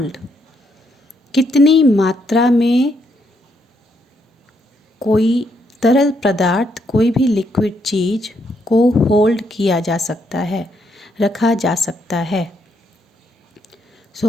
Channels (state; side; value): normal; both; correlation 0.75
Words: कितनी मात्रा में कोई तरल पदार्थ, कोई भी लिक्विड चीज को होल्ड किया जा सकता है, रखा जा सकता है.